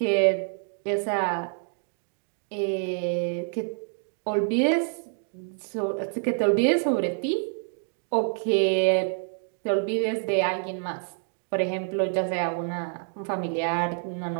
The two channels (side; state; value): left; silent; 59 dB below the other